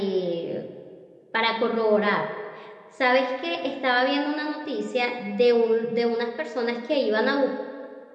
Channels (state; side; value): identical; both; correlation 1.00